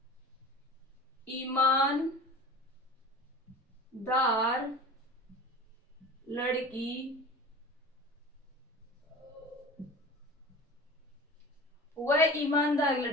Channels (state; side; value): normal; both; correlation 0.35